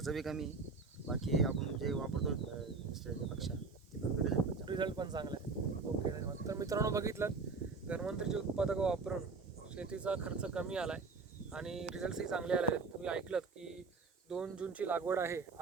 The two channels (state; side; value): quieter; left; 4.4 dB